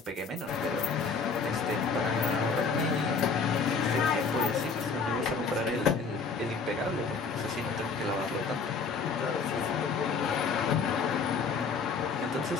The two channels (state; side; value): quieter; right; 5.0 dB